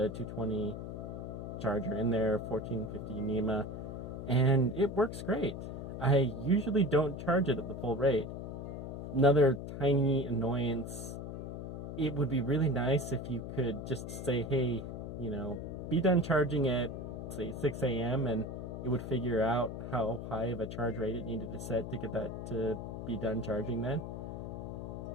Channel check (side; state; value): left; noise; hum, 7 dB below the sound